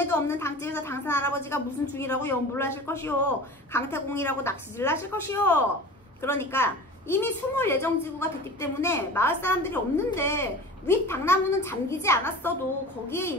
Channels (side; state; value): both; normal; correlation 0.37